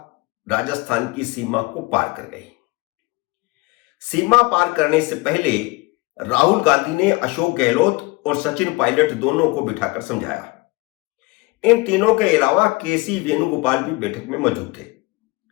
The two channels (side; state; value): right; quieter; 24.2 dB